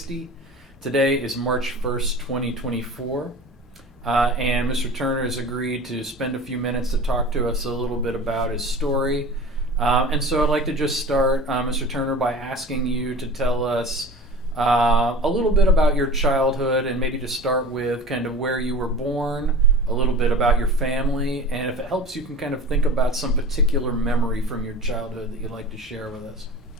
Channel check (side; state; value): both; normal; correlation 0.37